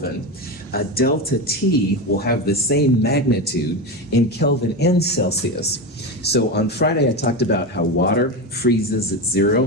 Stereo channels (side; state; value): both; normal; correlation 0.18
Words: a delta T will have the same magnitude in Kelvin and Celsius. So on Friday, I talked about how water freezes at